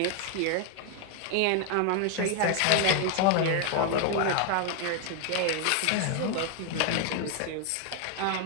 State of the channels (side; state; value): both; different; correlation 0.00